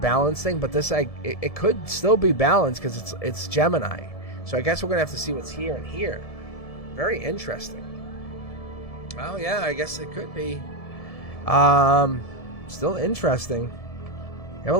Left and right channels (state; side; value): late; right; 1.7 ms